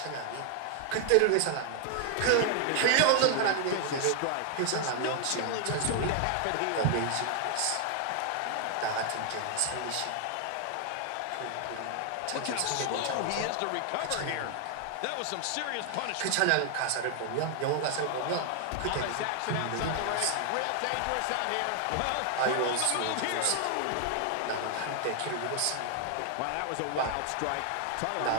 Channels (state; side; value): different; both; correlation 0.00